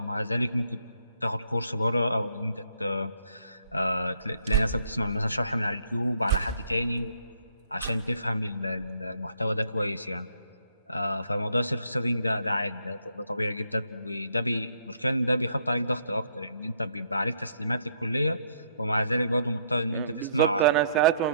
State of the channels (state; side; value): inverted; both; correlation -0.68